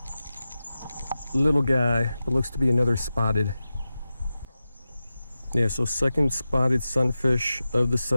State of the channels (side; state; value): both; inverted; correlation -0.93